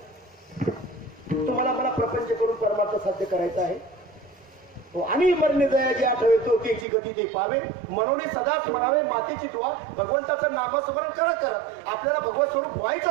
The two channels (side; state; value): left; drops out; at 6.9 s